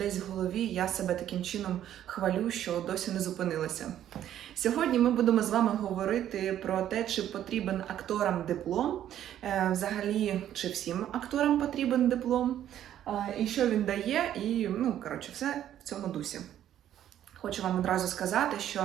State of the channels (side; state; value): left; quieter; 11.2 dB